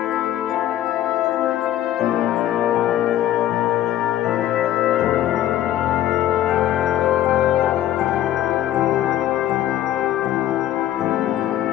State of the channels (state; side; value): quieter; right; 12.7 dB